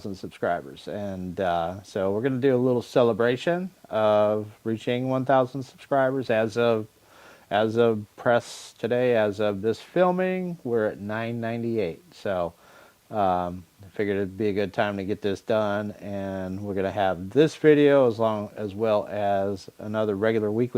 subscribers, and so we're going to do a little celebration of reaching 1,000 subscribers as of press today, as of this filming, we're at 998. So I figured it'd be a good time to get this done, and we're going to have this video as well as another regular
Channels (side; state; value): both; identical; correlation 1.00